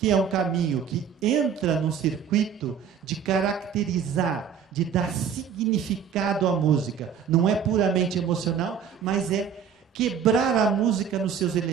é um caminho que entra no circuito de caracterizar, de dar significado à música. Não é puramente emocional, mas é quebrar a música nos seus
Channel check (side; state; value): left; quieter; 7.5 dB